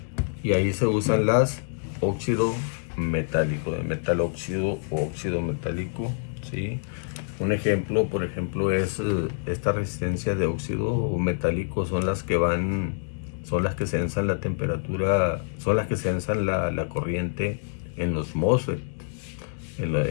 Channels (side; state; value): right; silent; digital silence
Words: Y ahí se usan las óxido metálico, de metal óxido o óxido metálico, ¿sí? Un ejemplo, por ejemplo, es esta resistencia de óxido metálico. Son las que sensan la temperatura, son las que sensan la corriente en los MOSFET.